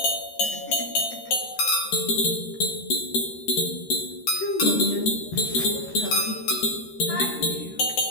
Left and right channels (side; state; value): right; late; 13 ms